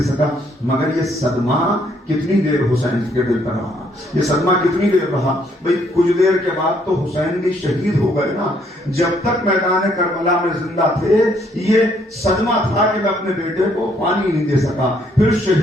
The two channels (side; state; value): both; normal; correlation 0.68